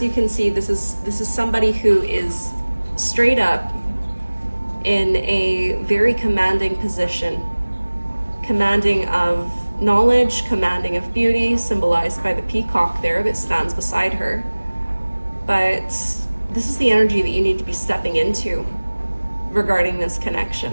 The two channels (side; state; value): both; inverted; correlation -1.00